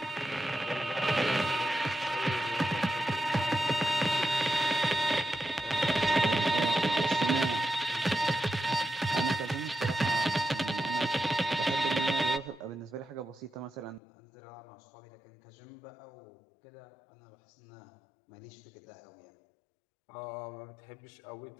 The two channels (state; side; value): drops out; right; at 14.0 s